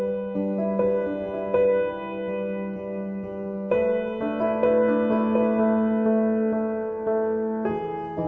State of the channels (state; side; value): identical; both; correlation 1.00